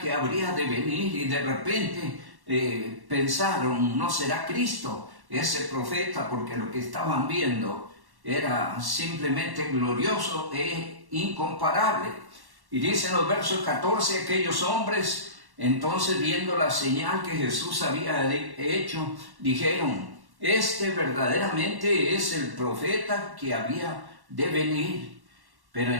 habría de venir, y de repente pensaron, ¿no será Cristo ese profeta? Porque lo que estaban viendo era simplemente glorioso e incomparable. Y dicen los versos 14, aquellos hombres, entonces viendo la señal que Jesús había hecho, dijeron, este verdaderamente es el profeta que había de venir. Pero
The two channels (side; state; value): left; late; 1.1 ms